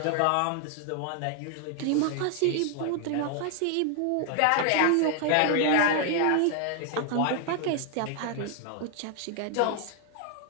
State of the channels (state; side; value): different; both; correlation 0.00